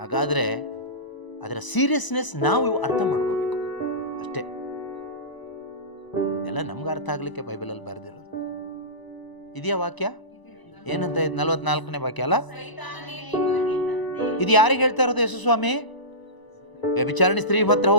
ಅದರ ಸೀರಿಯಸ್ನೆಸ್ ನಾವು ಅರ್ಥ ಮಾಡ್ಕೋಬೇಕು ಅಷ್ಟೇ. ಎಲ್ಲ ನಮ್ಗೆ ಅರ್ಥ ಆಗ್ಲಿಕ್ಕೆ ಬೈಬಲಲ್ಲಿ ಬರೆದಿರೋದು. ಇದೆಯಾ ವಾಕ್ಯ? ಏನಂತ 44ನೇ ವಾಕ್ಯ ಅಲ್ಲ? ಇದು ಯಾರಿಗೆ ಹೇಳ್ತಾ ಇರೋದು ಯೇಸು ಸ್ವಾಮಿ? ವ್ಯಭಿಚಾರಣಿ ಸ್ತ್ರೀ ಹತ್ರ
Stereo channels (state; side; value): late; right; 1.0 ms